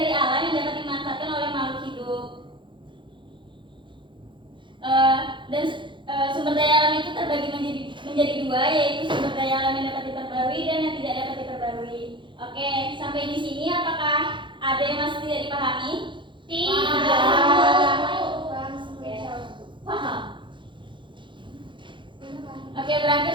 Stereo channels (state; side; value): late; left; 0.23 ms